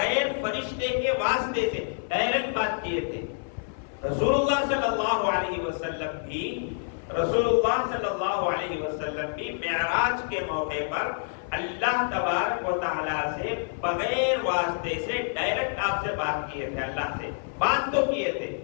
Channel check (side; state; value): right; silent; 57 dB below the other